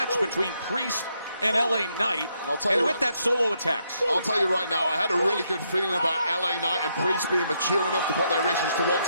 between Priest and LA Knight, and with that solo attacks. I'll tell you right now, I had a really good feeling about LA Knight and Priest being mature enough to put their issues to one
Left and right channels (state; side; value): inverted; both; correlation -0.77